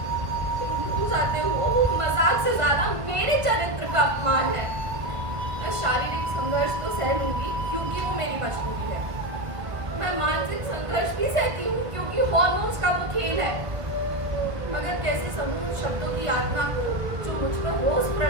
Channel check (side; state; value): left; late; 1.5 ms